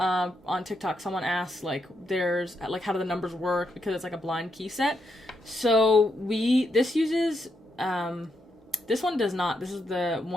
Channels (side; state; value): both; normal; correlation 0.81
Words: TikTok, someone asked, like, how do the numbers work, because it's like a blind key set. So this uses, this one does not. This is the